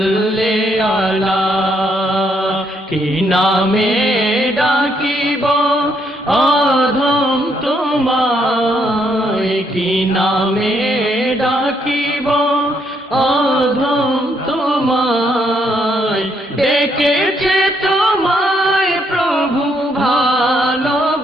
আলা। কি নামে ডাকিব অধম তোমায়, কি নামে ডাকিব অধম তোমায়, ডেকেছে তোমায় প্রভু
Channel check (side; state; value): both; normal; correlation 0.73